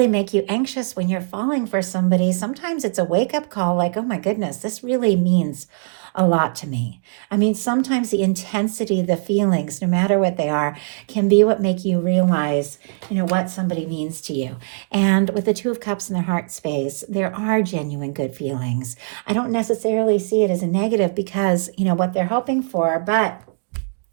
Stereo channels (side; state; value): left; silent; digital silence